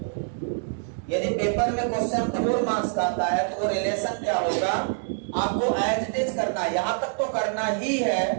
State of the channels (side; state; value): left; silent; digital silence